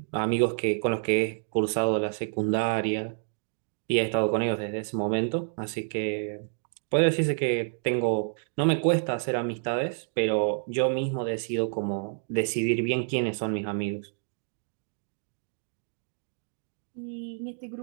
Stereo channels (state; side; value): silent; left; digital silence